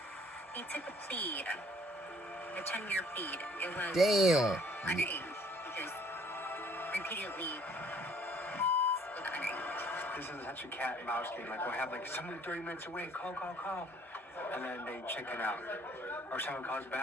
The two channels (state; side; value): normal; both; correlation 0.58